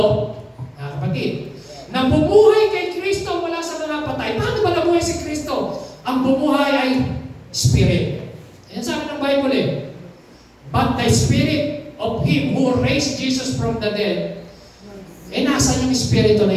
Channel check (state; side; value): identical; both; correlation 1.00